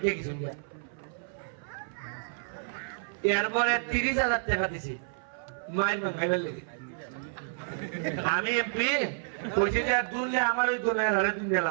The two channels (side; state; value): left; silent; 58 dB below the other